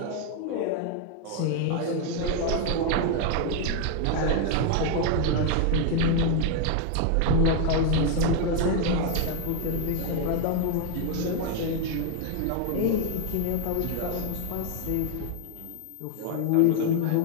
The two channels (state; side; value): different; both; correlation 0.01